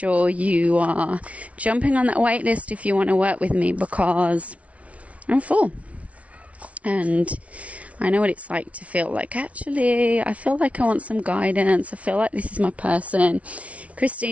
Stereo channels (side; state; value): left; late; 0.065 ms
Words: you are jumping on that wait list if you want to work with me, because I'm full. And I know what it's like to feel like, actually, I feel like I want some guidance. I feel like this is my person.